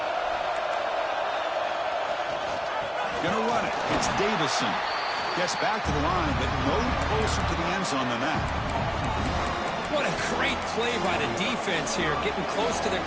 Gonna run it. It's Davison. Gets back to the line, but no closer to the end zone than that. What a great play by the defense here, getting close to the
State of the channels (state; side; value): identical; both; correlation 1.00